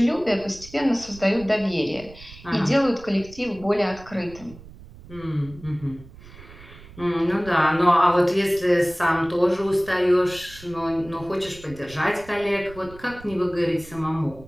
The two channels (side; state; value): right; noise; rumble, 19 dB below the sound